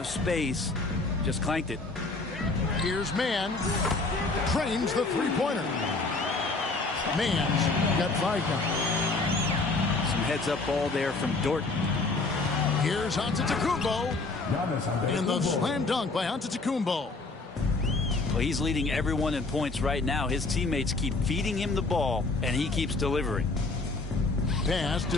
space. Just clanked it. Here's Mann. Trains the three-pointer. Mann's got 5 now. Some heads-up ball there from Dort. Here's Antetokounmpo. And the slam dunk by Antetokounmpo. Well, he's leading everyone in points right now. His teammates keep feeding him the ball, and he keeps delivering. Pass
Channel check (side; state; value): right; quieter; 3.5 dB